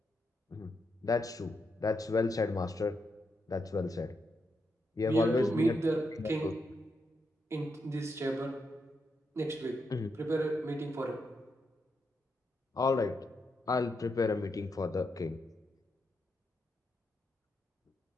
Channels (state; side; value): normal; both; correlation 0.82